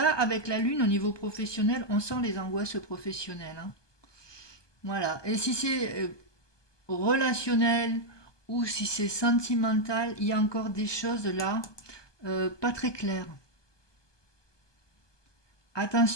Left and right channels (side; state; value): right; late; 1.2 ms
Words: avec la lune au niveau professionnel, on sent les angoisses professionnelles, hein. Voilà. Et si c'est relationnel ou si c'est sentimental, il y a encore des choses là pas très claires.